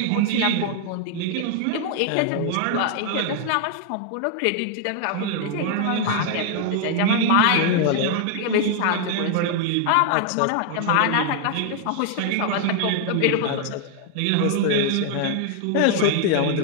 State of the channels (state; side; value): different; both; correlation 0.00